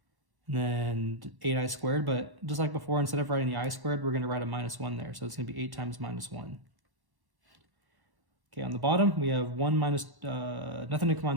And then 8i squared, but just like before, instead of writing the I squared, we're going to write a minus 1 there. So it's going to be 8 times minus 1. Okay, on the bottom, we have 1 minus, nothing to combine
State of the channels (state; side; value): late; left; 1.1 ms